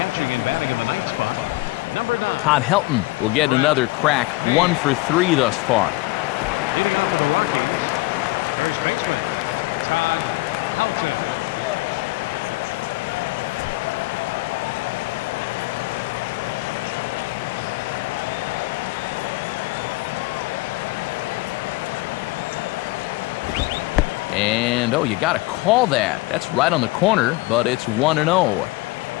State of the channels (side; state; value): right; quieter; 21.8 dB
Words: catching and batting in the 9th spot, number 9. Todd Helton will get another crack, 1 for 3 thus far. Leading off the Rockies, first baseman, Todd Helton. And, oh, you got to call that. That's right on the corner, but it's 1-0.